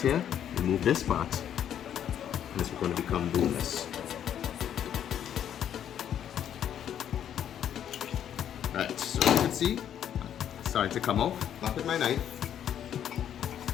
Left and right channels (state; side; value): quieter; right; 9.8 dB